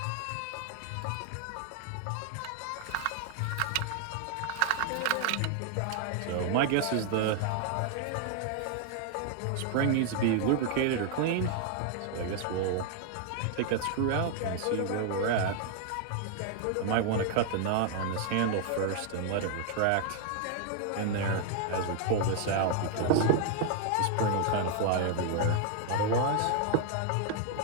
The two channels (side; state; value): both; different; correlation 0.00